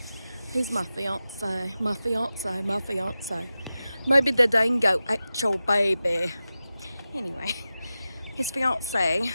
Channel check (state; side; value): inverted; both; correlation -0.93